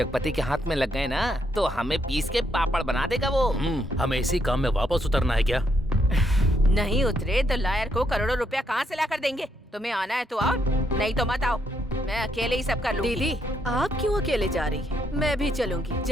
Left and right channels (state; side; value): normal; both; correlation 0.75